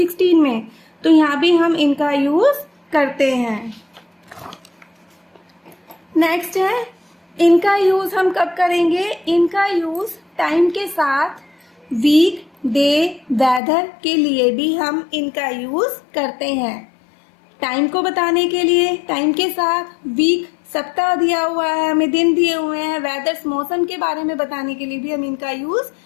में। तो यहाँ भी हम इनका यूज करते हैं। नेक्स्ट है, इनका यूज हम कब करेंगे? इनका यूज टाइम के साथ वीक, डे, वेदर के लिए भी हम इनका यूज करते हैं। टाइम को बताने के लिए टाइम के साथ, वीक सप्ताह दिया हुआ है, हमें दिन दिए हुए हैं, वेदर्स मौसम के बारे में बताने के लिए भी हम इनका यूज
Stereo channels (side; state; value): right; drops out; at 13.6 s